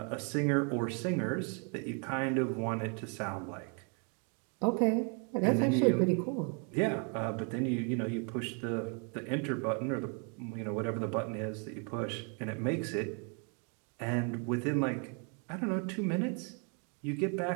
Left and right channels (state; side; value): quieter; left; 38.5 dB